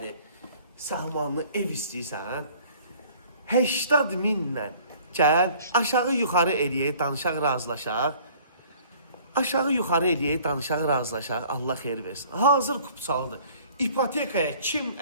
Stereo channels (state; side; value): inverted; both; correlation -0.53